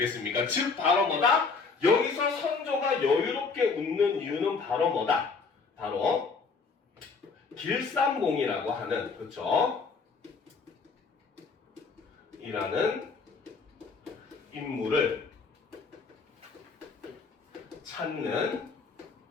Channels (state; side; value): quieter; right; 4.8 dB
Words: 즉 바로 뭐다? 여기서 선조가 여유롭게 웃는 이유는 바로 뭐다? 바로 길산봉이라고 하는, 그렇죠? 이라는 인물을 찾는